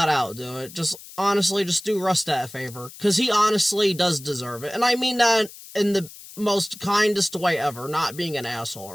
out do it. Just honestly, just do Russ that favor. Because he honestly does deserve it. And I mean that in the most kindest way ever, not being an asshole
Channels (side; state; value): left; noise; hiss, 17 dB below the sound